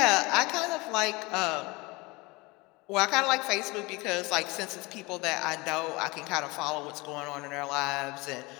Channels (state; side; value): quieter; right; 24.3 dB